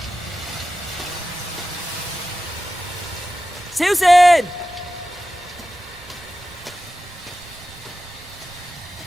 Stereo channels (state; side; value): noise; right; rumble, 25 dB below the sound